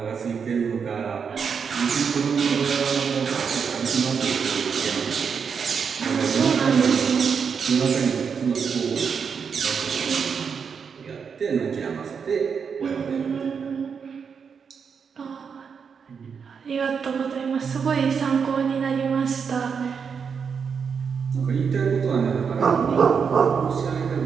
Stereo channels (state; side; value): quieter; left; 6.3 dB